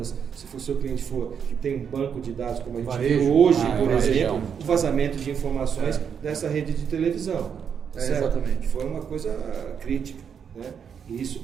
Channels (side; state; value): left; quieter; 7.3 dB